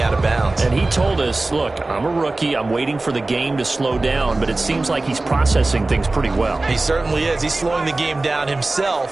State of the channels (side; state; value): left; quieter; 3.1 dB